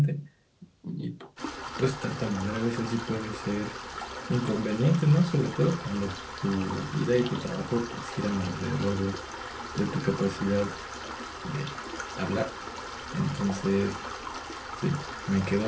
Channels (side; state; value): both; identical; correlation 1.00